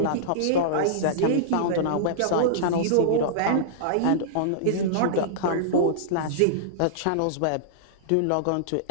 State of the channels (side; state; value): both; different; correlation -0.02